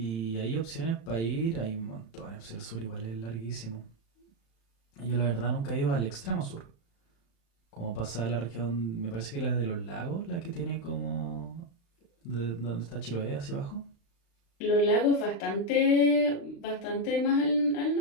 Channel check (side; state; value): right; late; 35 ms